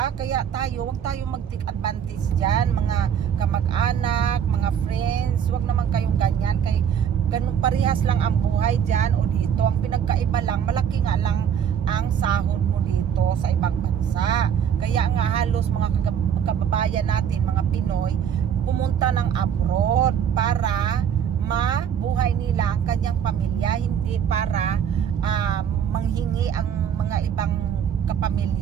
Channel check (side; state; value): left; quieter; 8.4 dB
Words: Kaya wag tayo mag-take advantage dyan, mga kamag-anak, mga friends, wag naman kayong ganyan, kay ganun parehas lang ang buhay dyan o dito. Ang pinagkaiba lang, malaki nga lang ang sahod mo dito sa ibang bansa. Kaya nga halos mga kababayan natin, mga Pinoy, pumunta ng abroad para mabuhay nila ang kanyang pamilya, hindi para manghingi ang mga ibang